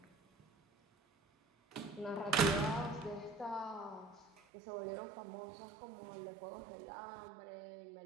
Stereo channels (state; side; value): drops out; left; at 4.3 s